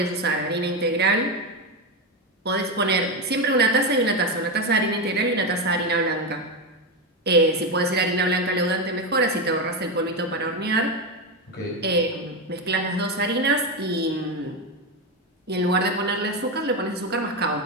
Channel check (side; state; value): both; normal; correlation 0.11